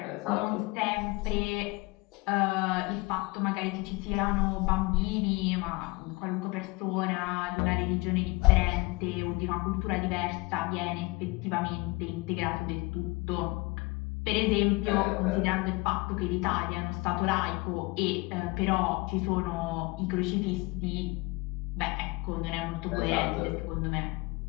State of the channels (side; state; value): right; quieter; 24.7 dB